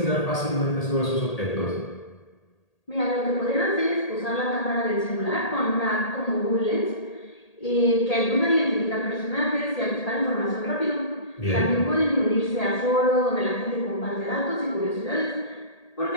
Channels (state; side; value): late; right; 1.8 ms